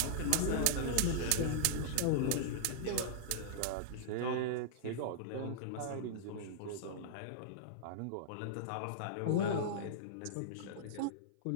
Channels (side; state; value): both; different; correlation -0.02